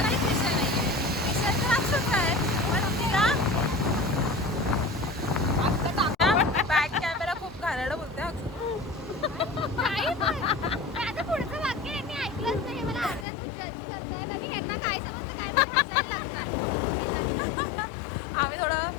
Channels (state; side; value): drops out; right; at 13.2 s